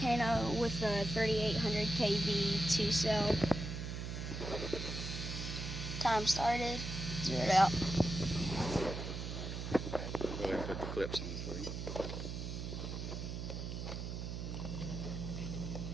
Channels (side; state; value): right; noise; hum, 5 dB below the sound